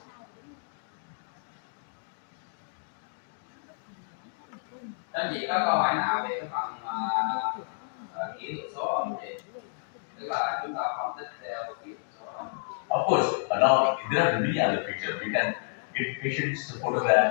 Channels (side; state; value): right; silent; digital silence